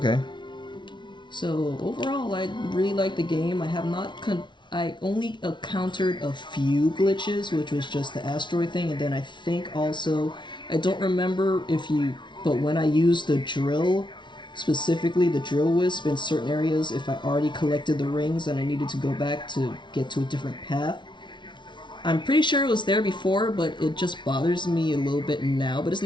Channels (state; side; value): late; right; 0.23 ms